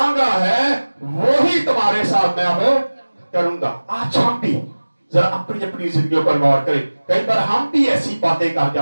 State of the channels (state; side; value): inverted; both; correlation -1.00